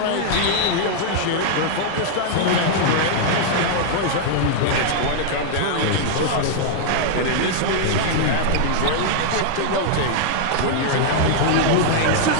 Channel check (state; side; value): different; both; correlation -0.01